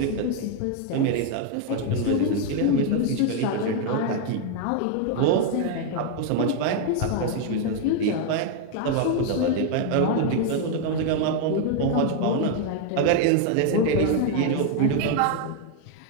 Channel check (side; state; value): both; different; correlation 0.01